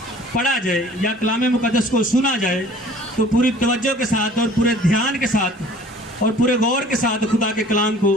پڑھا جائے یا کلام مقدس کو سنا جائے تو پوری توجہ کے ساتھ اور پورے دھیان کے ساتھ اور پورے غور کے ساتھ خدا کے کلام کو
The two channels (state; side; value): normal; both; correlation 0.50